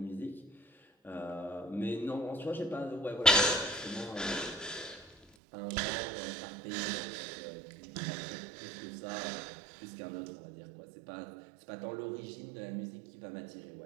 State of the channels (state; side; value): drops out; left; at 5.2 s